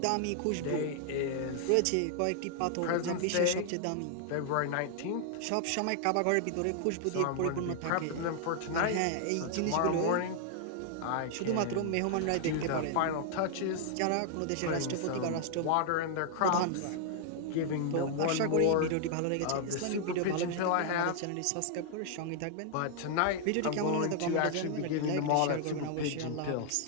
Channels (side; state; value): both; different; correlation 0.00